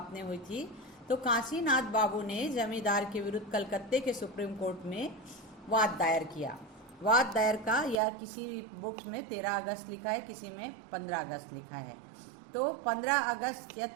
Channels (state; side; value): drops out; left; at 8.0 s